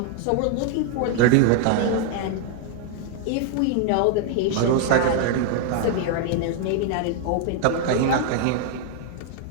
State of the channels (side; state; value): both; different; correlation 0.00